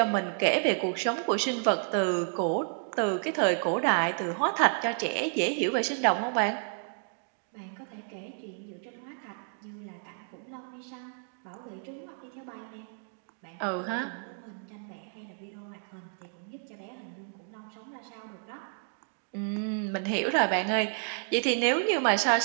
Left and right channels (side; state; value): left; silent; 57 dB below the other